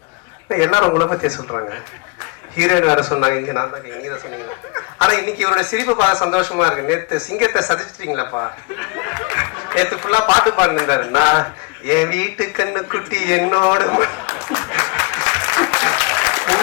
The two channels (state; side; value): quieter; right; 27.7 dB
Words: எல்லாரும் உங்களை பத்தியே சொல்றாங்க. ஹீரோயின் வேற சொன்னாங்க, இங்க நான் தான் நீங்க தான் சொன்னீங்க. ஆனா இன்னைக்கு இவருடைய சிரிப்பு பார்க்க சந்தோஷமா இருக்கு. நேத்து சிங்கத்தை சதிச்சிட்டீங்களாப்பா. நேத்து ஃபுல்லா பாட்டு பாடுந்தாரு. நான் என் வீட்டு கண்ணு குட்டி என்னோட